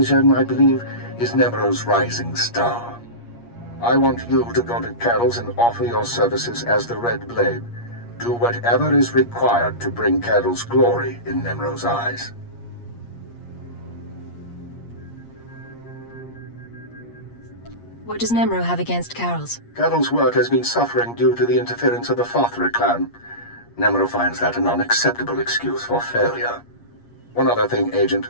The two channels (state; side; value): late; right; 8.5 ms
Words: I believe, is Nemro's rising star. I want you to go to Carols and offer your services as the Red Blade. Do whatever is required to bring Carols glory in Nemro's eyes. What does Nemro have against Carols? Carols' work has been suffering due to the interference of the Fathra clan. Nemro finds that an unacceptable excuse for failure. One other thing,